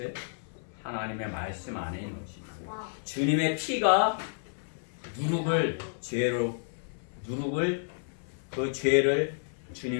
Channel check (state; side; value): silent; right; 57 dB below the other